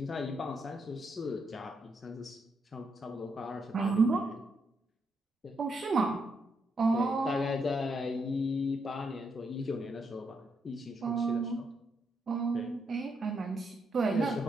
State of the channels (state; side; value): normal; both; correlation 0.79